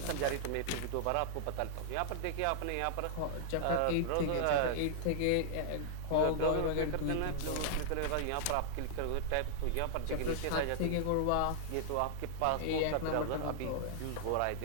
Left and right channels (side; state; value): both; different; correlation -0.01